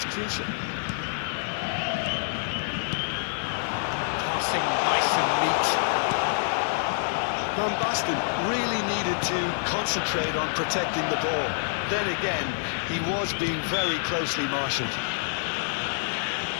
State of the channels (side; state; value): right; silent; digital silence